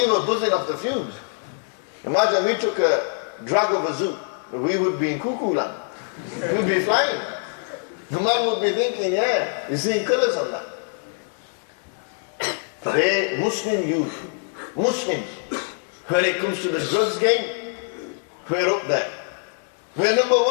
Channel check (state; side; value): silent; right; 56 dB below the other